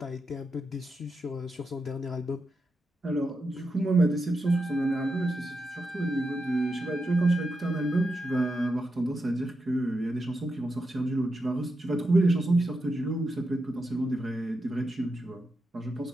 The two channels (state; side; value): normal; both; correlation 0.87